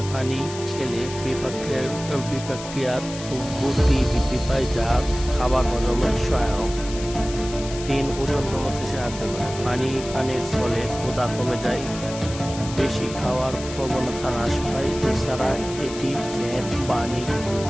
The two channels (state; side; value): noise; left; hiss, 12 dB below the sound